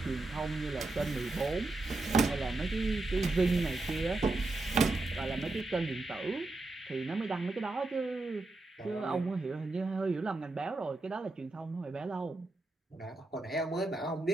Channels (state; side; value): quieter; left; 3.1 dB